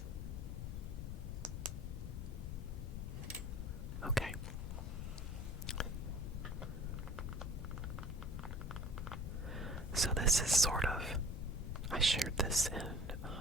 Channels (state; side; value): noise; left; rumble, 4 dB below the sound